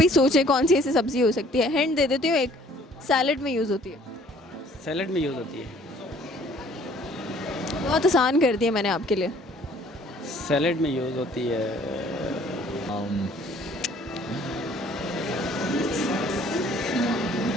ही सोचें कौन सी ऐसी सब्जी हो सकती है। हिंट दे देती हूँ, एक सैलड में यूज़ होती है। सैलड में यूज़ होती है। बहुत आसान कर दिया मैंने आपके लिए। सैलड में यूज़ होती है।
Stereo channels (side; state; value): both; normal; correlation 0.57